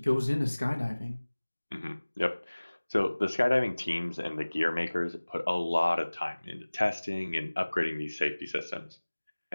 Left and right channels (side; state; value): both; inverted; correlation -1.00